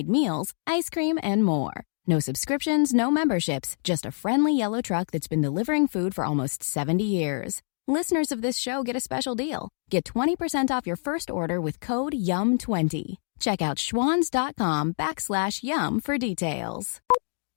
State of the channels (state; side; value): silent; right; digital silence